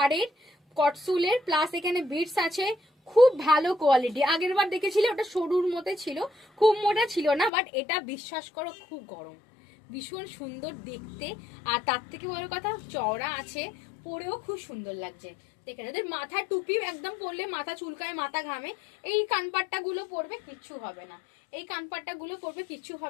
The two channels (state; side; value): drops out; right; at 7.5 s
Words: কটসুলের, প্লাস এখানে বিটস আছে, খুব ভালো কোয়ালিটি। আগের বার দেখেছিলে ওটা সরুর মতে ছিল, খুব মোটা ছিল না, বাট এটা বিশ্বাস করো খুব গরম, ভীষণ সুন্দর দেখতে। আর তার থেকে বড় কথা চওড়া আছে, পরেও খুব সুন্দর লাগছে। দেখে যাদের মাথায় টুপি একদম পরলে মাথা চুলকায়, মাথা ঘামে, এই কানপাট্টা গুলো পরবে কিচ্ছু হবে না, এই কানপাট্টা গুলো পরবে কিচ্ছু